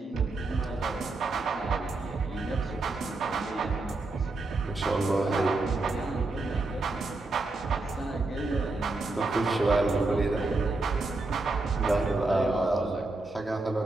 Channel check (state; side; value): quieter; left; 3.2 dB